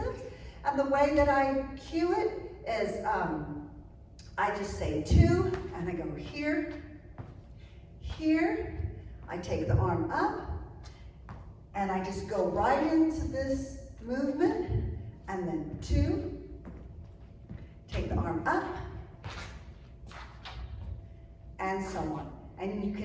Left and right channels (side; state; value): both; identical; correlation 1.00